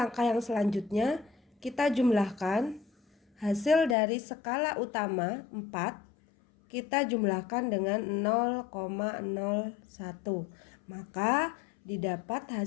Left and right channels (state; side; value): drops out; right; at 4.0 s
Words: yang selanjutnya kita jumlahkan hasil dari skala utama 4. Kita jumlahkan dengan 0,01. Maka didapat